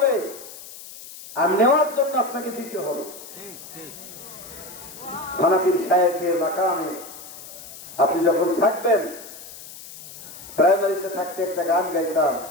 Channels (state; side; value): noise; left; hiss, 15 dB below the sound